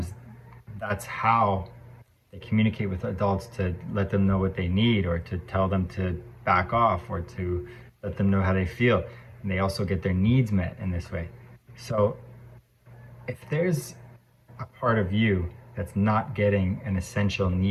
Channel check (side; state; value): both; identical; correlation 1.00